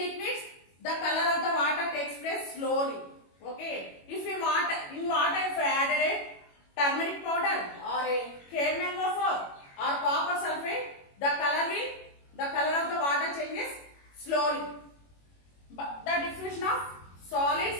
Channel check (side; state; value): right; late; 21 ms